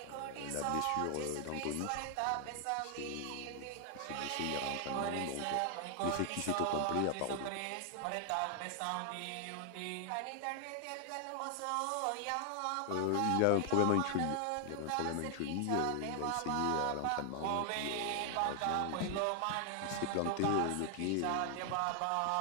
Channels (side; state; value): both; different; correlation 0.00